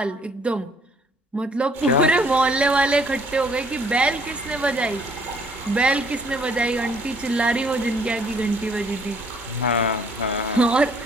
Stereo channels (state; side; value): normal; both; correlation 0.62